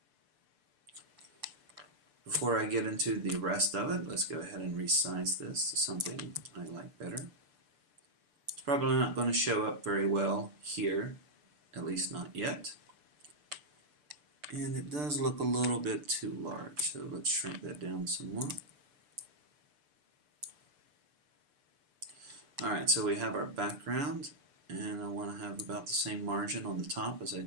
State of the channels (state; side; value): late; left; 6.8 ms